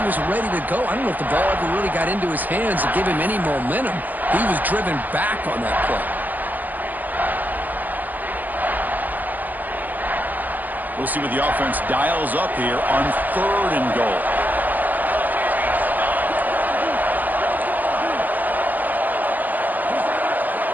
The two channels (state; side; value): late; left; 0.085 ms